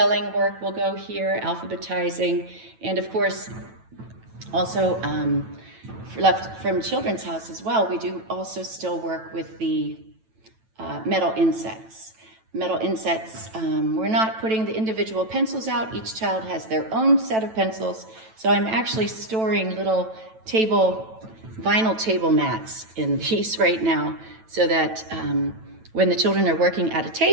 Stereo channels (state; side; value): late; left; 9.1 ms